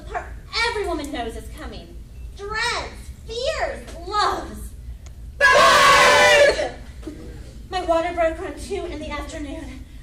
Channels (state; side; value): identical; both; correlation 1.00